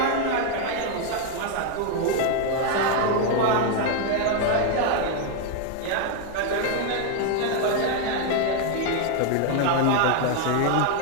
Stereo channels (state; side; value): different; both; correlation 0.00